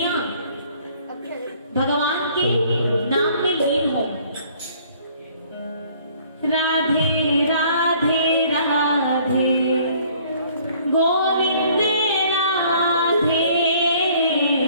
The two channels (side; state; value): both; inverted; correlation -0.58